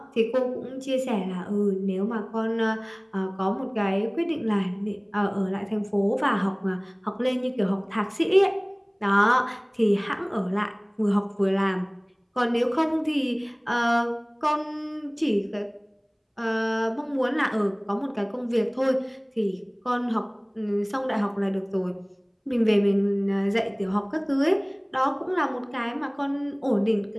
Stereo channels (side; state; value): both; identical; correlation 1.00